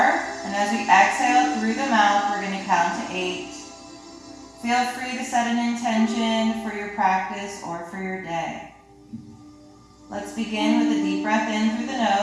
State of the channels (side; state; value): both; identical; correlation 1.00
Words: and as we exhale through the mouth, we're going to count to 8. Feel free to set an intention for your practice or for your day. Let's begin with a deep breath in through the